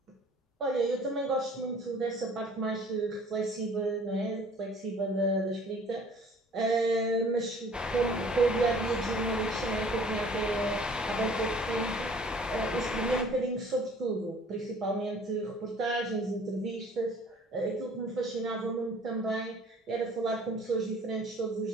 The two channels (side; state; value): both; normal; correlation 0.52